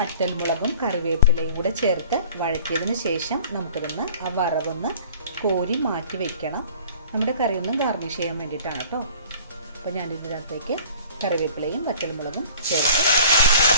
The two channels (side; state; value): both; inverted; correlation -0.47